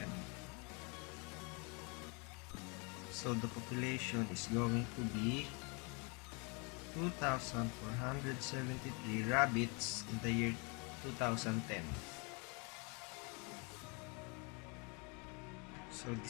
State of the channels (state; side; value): quieter; right; 32.6 dB